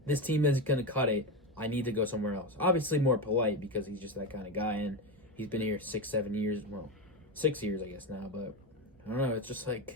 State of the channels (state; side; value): normal; both; correlation 0.16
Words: This team isn't going to cut it. I need to go somewhere else. Obviously more polite because he's just that kind of guy, and he's been here 6-7 years. Well, 6 years, I guess, now. But I don't know. It's just I